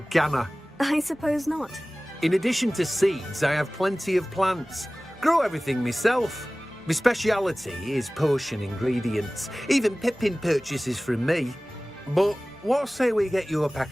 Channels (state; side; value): normal; both; correlation 0.98